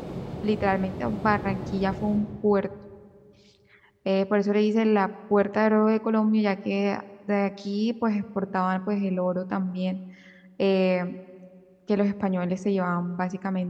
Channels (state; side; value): identical; both; correlation 1.00